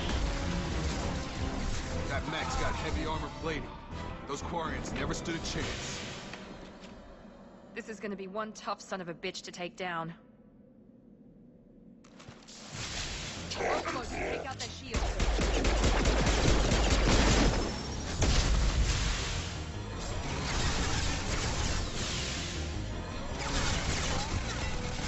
That mech's got heavy armor plating. Those Quarians never stood a chance. This is gonna be one tough son of a bitch to take down. Overload, take out their shields.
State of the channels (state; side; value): identical; both; correlation 1.00